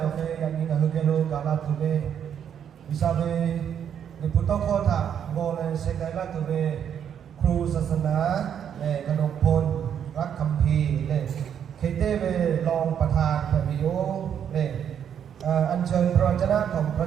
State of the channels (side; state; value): left; quieter; 8.7 dB